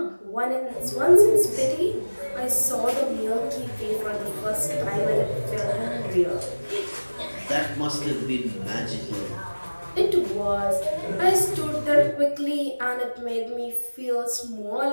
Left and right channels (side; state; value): both; inverted; correlation -1.00